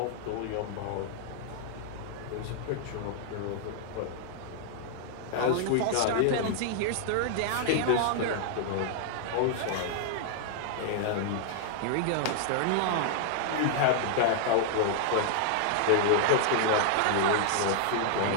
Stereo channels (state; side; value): different; both; correlation -0.01